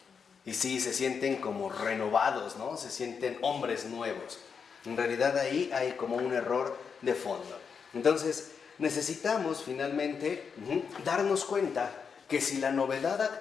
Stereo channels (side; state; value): right; quieter; 6.2 dB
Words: Y sí, se sienten como renovados, ¿no? Se sienten hombres nuevos. En realidad ahí hay como un error de fondo. Entonces, necesitamos finalmente darnos cuenta que si la novedad